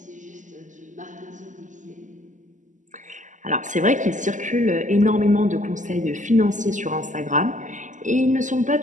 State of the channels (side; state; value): left; late; 0.37 ms